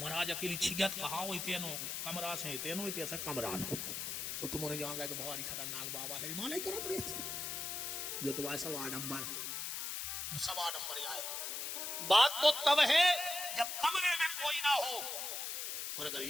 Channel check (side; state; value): left; noise; hiss, 3 dB below the sound